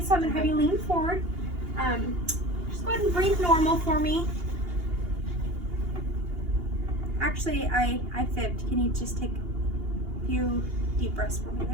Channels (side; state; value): left; late; 2.8 ms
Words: I'm going to have you lean forward. Just go ahead and breathe normal for me. Actually, I fibbed. Can you just take a few deep breaths for me?